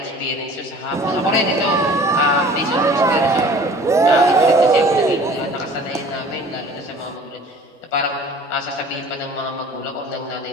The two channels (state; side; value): normal; both; correlation 0.47